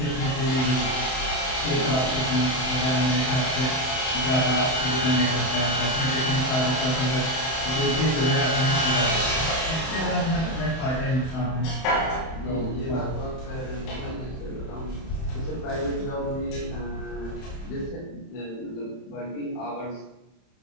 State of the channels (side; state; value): right; late; 31 ms